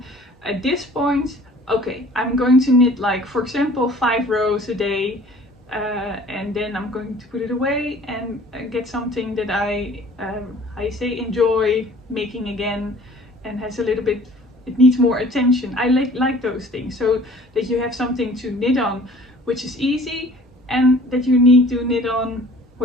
at this point. Okay, I'm going to knit, like, for example, 5 rows a day, and then I'm going to put it away and get something that I enjoy making again, and has a little bit, it needs more attention. I like those things, so that you have something to knit on which is easy, and that you need to knit on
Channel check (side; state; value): both; normal; correlation 0.50